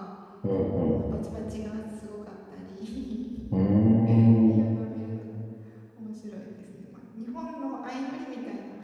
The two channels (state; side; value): identical; both; correlation 1.00